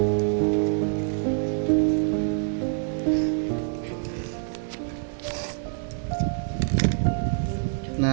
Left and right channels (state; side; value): silent; left; digital silence